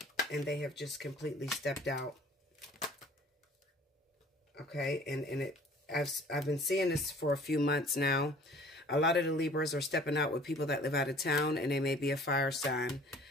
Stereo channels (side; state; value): both; normal; correlation 0.51